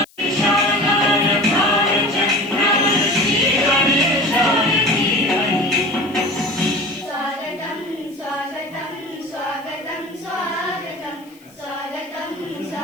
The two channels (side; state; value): left; noise; hiss, 29 dB below the sound